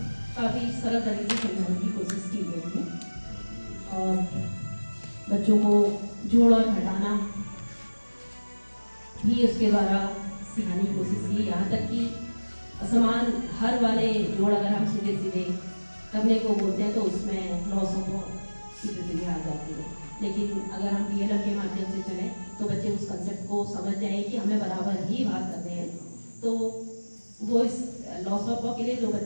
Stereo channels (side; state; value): both; inverted; correlation -1.00